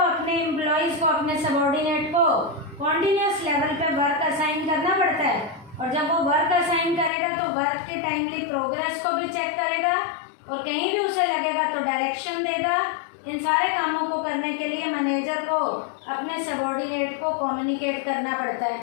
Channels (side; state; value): right; drops out; at 7.1 s